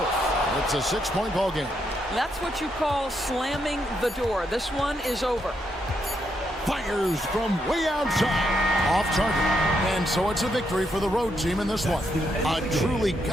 It's a 6-point ball game. That's what you call slamming the door. This one is over. Fires from way outside. Off target. And so it's a victory for the road team in this one. A truly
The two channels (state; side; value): normal; both; correlation 0.79